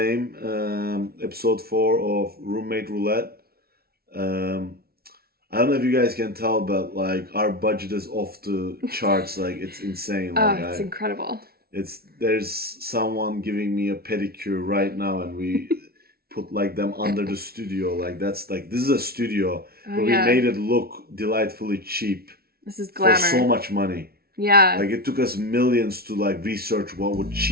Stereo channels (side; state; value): left; late; 0.44 ms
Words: episode 4 of Roommate Roulette. I don't know if you guys can tell, but, like, our budget is off the charts. Like, it's insane. Like, it's incredible. There's someone giving me a pedicure right now, and we put, like, them under the studio. Like, this is a studio, but we made it look delightfully cheap. This is glamour. For so much money. Yeah. Like, it took us millions to, like, research what would